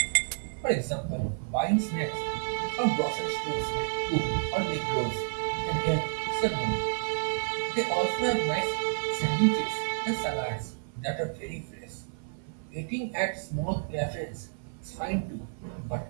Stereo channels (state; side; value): silent; left; 58 dB below the other